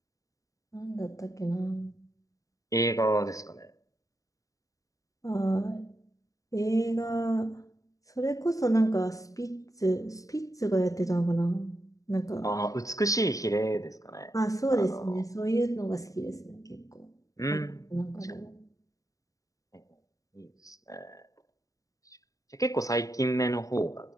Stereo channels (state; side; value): late; right; 0.16 ms